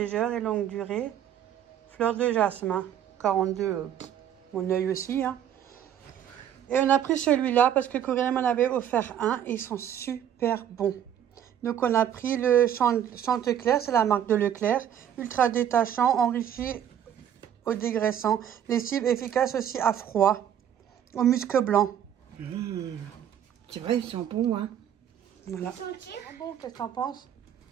et longue durée. Fleur de jasmin, 42, mon œil aussi. Hein. Et on a pris celui-là parce que Corinne m'en avait offert un et ils sont super bons. Donc on a pris le Chantecler, c'est la marque de Leclerc. Ultra détachant, enrichi au dégraissant. Lessive efficace aussi à froid. Au musc blanc. C'est vrai, ils sont bons, hein. Voilà. Bon, qu'est-ce que t'en penses?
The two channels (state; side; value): quieter; left; 9.9 dB